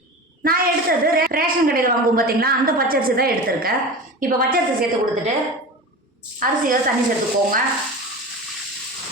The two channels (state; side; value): normal; both; correlation 0.31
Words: நான் எடுத்தது ரேஷன் கடையில் வாங்குவோம் பார்த்தீங்களா, அந்த பச்சரிசி தான் எடுத்திருக்கேன். இப்போ பச்சரிசி சேர்த்து கொடுத்துட்டு அரிசியை தண்ணி சேர்த்துக்கோங்க.